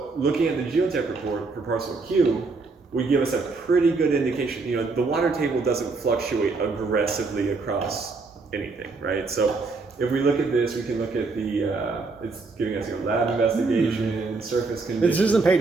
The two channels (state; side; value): quieter; left; 4.0 dB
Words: looking at the geotech report for parcel Q would give us a pretty good indication. The water table doesn't fluctuate aggressively across anything, right? So if we look at this, we can look at the, it's giving us lab investigation, surface conditions. This isn't